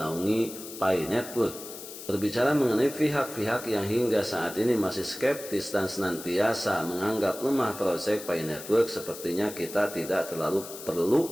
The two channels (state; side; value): noise; left; hiss, 12 dB below the sound